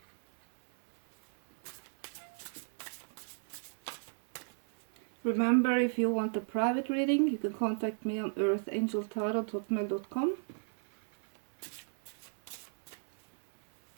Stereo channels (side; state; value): left; silent; 55 dB below the other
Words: Remember, if you want a private reading, you can contact me on earthangeltarot@hotmail.com.